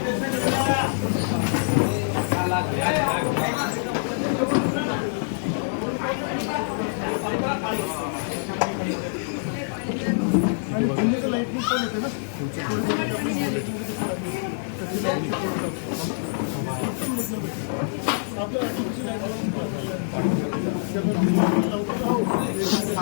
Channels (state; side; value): silent; right; digital silence